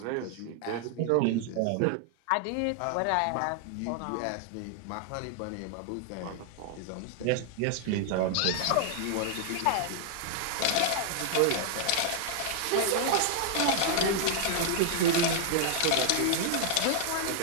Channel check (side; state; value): both; different; correlation 0.00